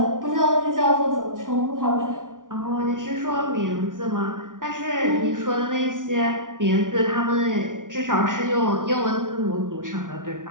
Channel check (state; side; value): late; left; 0.88 ms